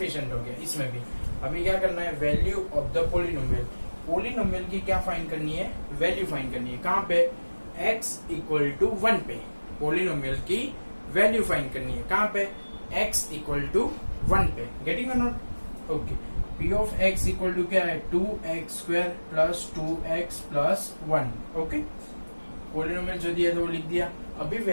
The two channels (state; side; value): inverted; both; correlation -1.00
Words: हो गया। इसमें भी अभी क्या करना है, वैल्यू ऑफ द पोलिनोमियल की क्या फाइंड करनी है, वैल्यू फाइंड करनी है। कहाँ पे, x इक्वल टू 1 पे पोलिनोमियल की वैल्यू फाइंड करनी है। कहाँ पे, x इक्वल टू 1 पे। गेटिंग और not. Okay, p of x equal to क्या है, 2x square plus 2x plus 1। Okay, polynomial जो दिया था वो लिख दिया। अभी